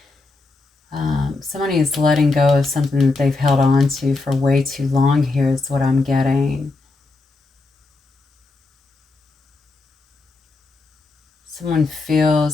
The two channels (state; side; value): quieter; right; 3.6 dB